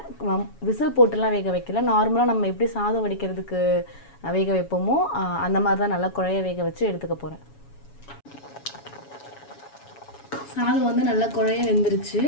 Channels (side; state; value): right; late; 7.1 ms